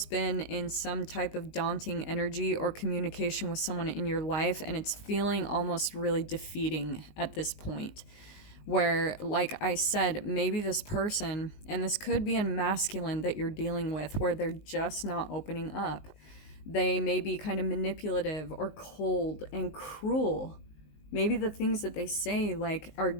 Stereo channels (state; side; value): late; right; 19 ms